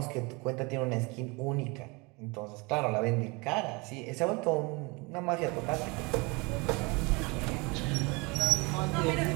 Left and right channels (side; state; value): left; quieter; 27.5 dB